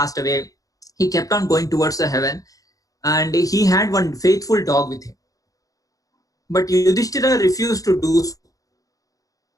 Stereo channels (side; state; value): right; late; 0.17 ms